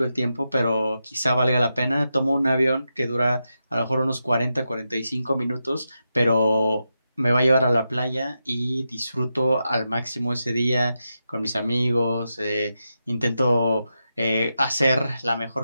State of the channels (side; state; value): both; inverted; correlation -0.88